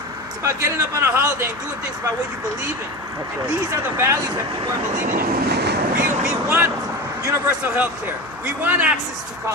It's about getting up on a holiday and doing things about what you believe in. And these are the values that people are believing in. We want universal health care. We want access to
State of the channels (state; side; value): noise; right; hum, 23 dB below the sound